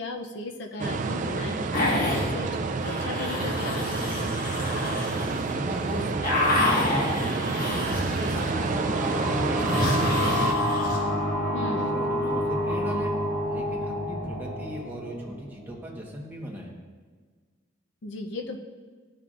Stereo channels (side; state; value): both; normal; correlation 0.33